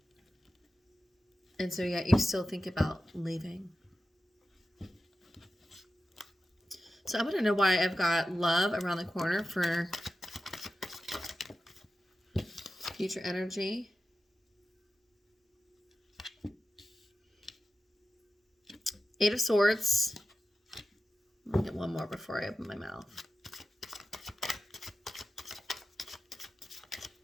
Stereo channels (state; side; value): normal; both; correlation 0.93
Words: And so, yeah, you still think about leaving. So I want to know why I've got love around the corner for future energy. Eight of Swords. I'll get one more before I open my mouth.